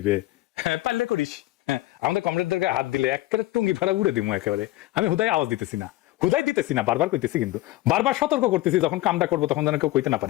হ্যাঁ পারলে করিস। হ্যাঁ আমাদের কমরেডদেরকে হাত দিলে একেবারে টুঙ্গি ফেলা উড়ে দিব একেবারে। আমি হুদাই আওয়াজ দিতেছি না, হুদাই দিতেছি না, বারবার কইতেছি, কিন্তু বারবার সতর্ক করতেছি যখন কামটা করবো তখন যেন কেউ কইতে না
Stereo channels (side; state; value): right; quieter; 17.5 dB